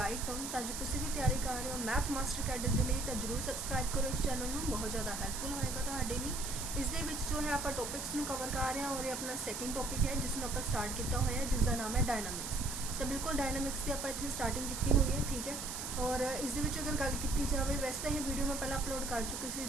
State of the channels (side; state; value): right; noise; hiss, 5 dB below the sound